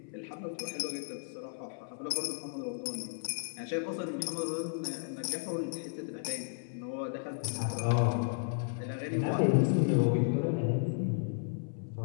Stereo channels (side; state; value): right; silent; 55 dB below the other